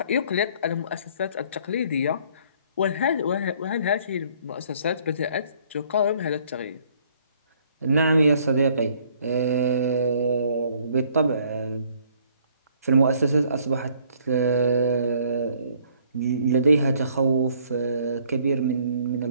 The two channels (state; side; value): inverted; both; correlation -0.61